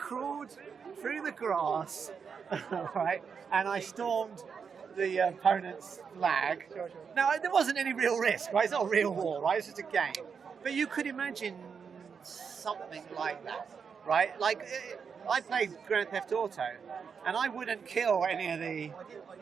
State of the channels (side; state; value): left; quieter; 6.2 dB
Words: through the grass, right, and I stormed the opponent's flag. Now, there wasn't any real risk, right? It's not a real war, right? It's just a game. But you could imagine something like that, right? Like, I played Grand Theft Auto, and I wouldn't kill any of the